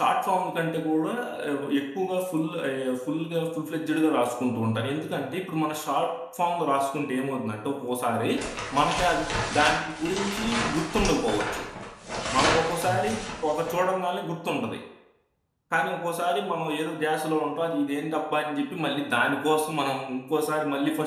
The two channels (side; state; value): both; identical; correlation 1.00